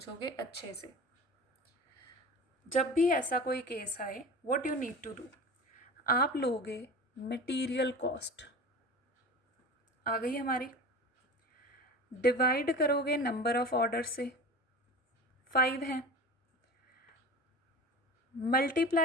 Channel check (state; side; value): normal; both; correlation 0.34